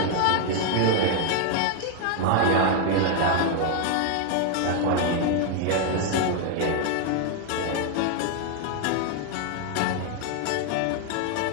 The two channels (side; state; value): both; different; correlation 0.00